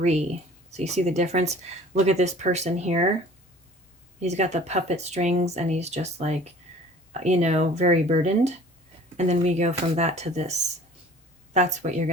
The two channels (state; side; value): normal; both; correlation 0.48